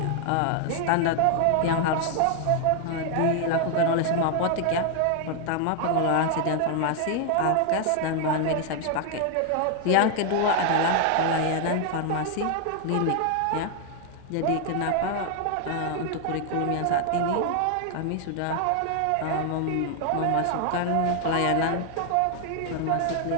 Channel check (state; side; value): different; both; correlation 0.00